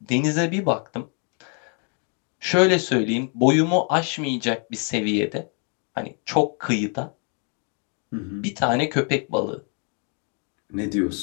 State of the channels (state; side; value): quieter; right; 39.0 dB